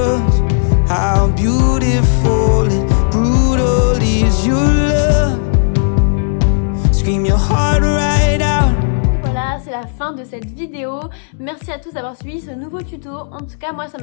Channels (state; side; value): silent; right; digital silence